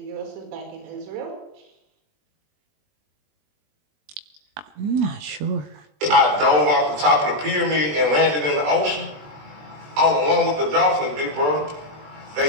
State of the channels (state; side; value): late; left; 20 ms